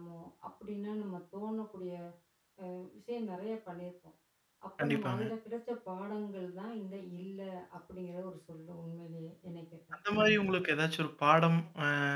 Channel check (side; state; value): both; identical; correlation 1.00